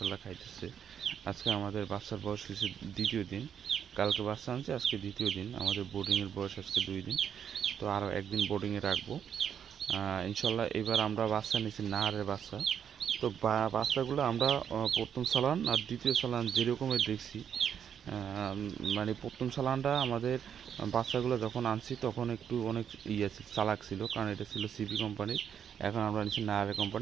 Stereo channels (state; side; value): quieter; left; 8.3 dB